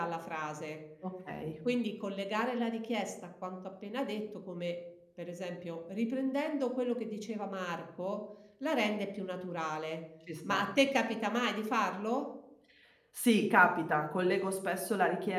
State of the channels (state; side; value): identical; both; correlation 1.00